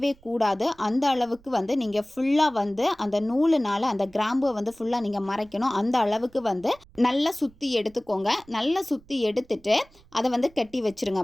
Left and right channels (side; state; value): right; noise; rumble, 28 dB below the sound